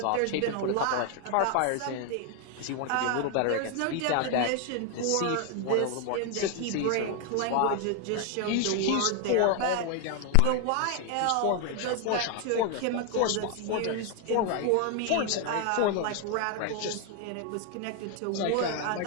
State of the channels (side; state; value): both; different; correlation 0.01